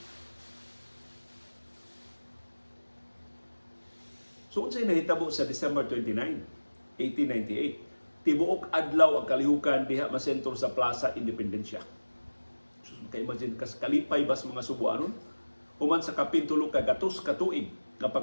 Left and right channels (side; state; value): both; inverted; correlation -1.00